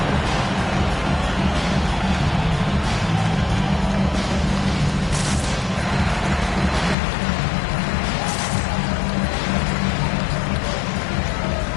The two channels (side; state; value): right; drops out; at 7.0 s